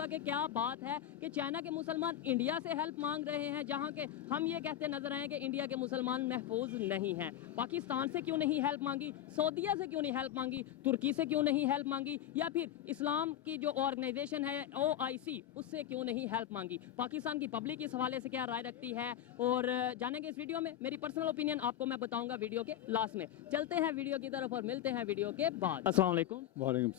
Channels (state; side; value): quieter; right; 11.5 dB